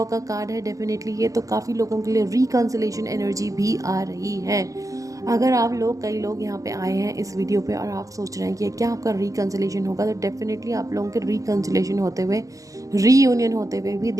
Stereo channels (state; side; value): late; left; 0.16 ms